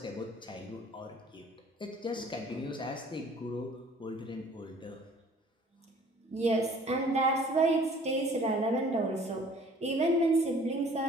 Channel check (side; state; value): both; normal; correlation 0.53